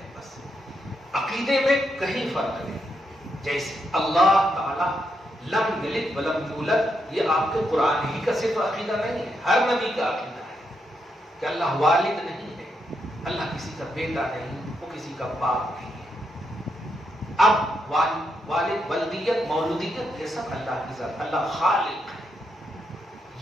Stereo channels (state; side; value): normal; both; correlation 0.81